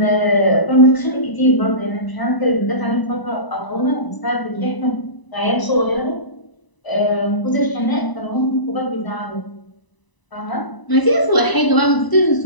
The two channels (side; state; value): right; late; 1.0 ms